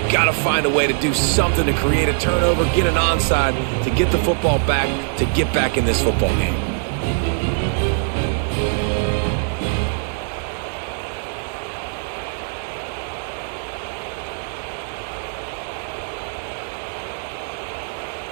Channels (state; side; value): silent; left; 64 dB below the other